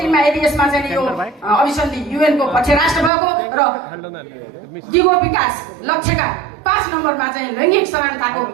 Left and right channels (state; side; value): drops out; left; at 3.1 s